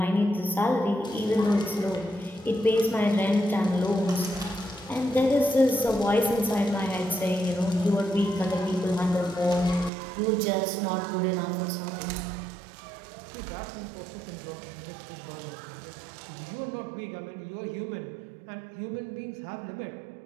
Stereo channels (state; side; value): drops out; left; at 9.9 s